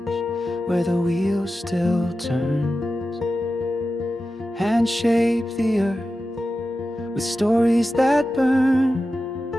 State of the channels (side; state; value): both; normal; correlation 0.92